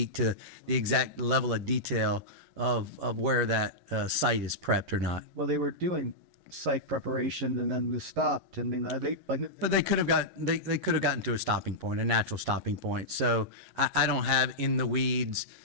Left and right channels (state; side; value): late; left; 10 ms